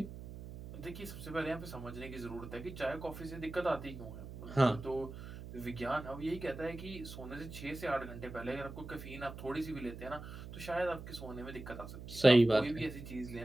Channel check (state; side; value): noise; right; hum, 11 dB below the sound